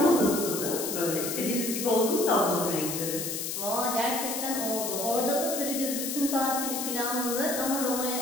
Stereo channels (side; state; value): left; noise; hiss, 3 dB below the sound